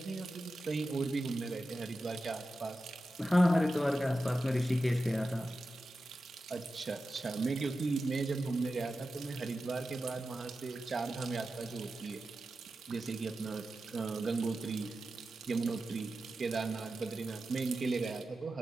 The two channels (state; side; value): normal; both; correlation 0.92